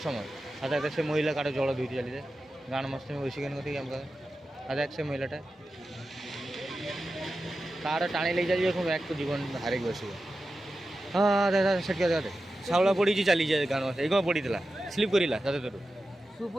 সময়। আধা এক সে মহিলা কারো জଳ ধুইতে ଚାଲିଯାଏ ଗାଁର ମସ୍ତି ବସି କେন କତିକି ଆମ ଆধା এক ସେ ମହିଳାଟା ତାର ଟାଣି ନେଇ ଚାଲିଯିବ ପୁଣି ବ୍ୟାଗ୍ ଜୀବନ ହାରିକି ବସିବ। ହଁ ଦାଦା ସେଠି ଦାଦା ଶାଉଳା ପଡ଼ିଛି ଚାଲିଯାଏ ଗାଁର ଏଇ କ'ଣ ପଡ଼ିଥିଲା ସ୍ଲିପ୍ କରିଲା ଦାଦା ତୋର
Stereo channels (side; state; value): both; normal; correlation 0.92